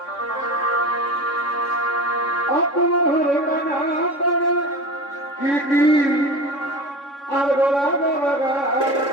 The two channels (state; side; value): late; right; 3.6 ms